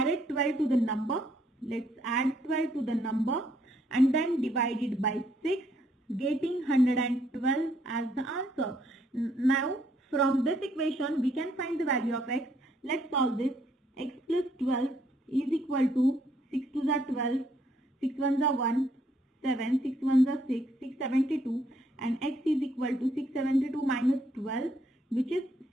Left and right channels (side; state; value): both; normal; correlation 0.70